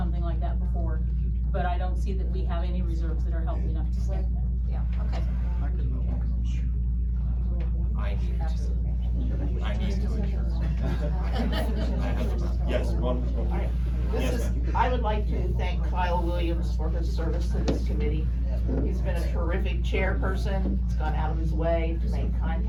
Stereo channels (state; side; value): identical; both; correlation 1.00